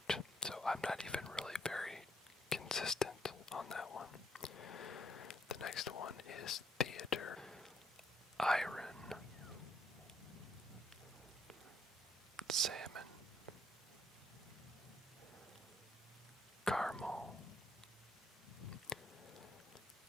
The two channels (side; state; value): both; normal; correlation 0.70